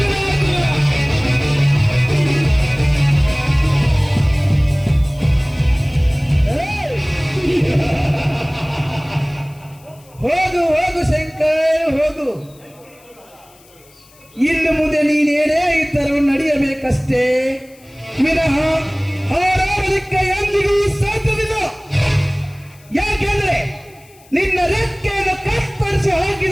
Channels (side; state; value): left; noise; hiss, 28 dB below the sound